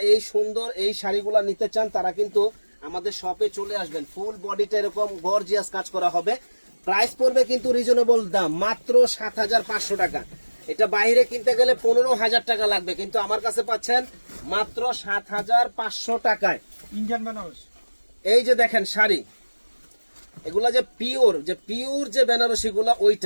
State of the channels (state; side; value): inverted; both; correlation -1.00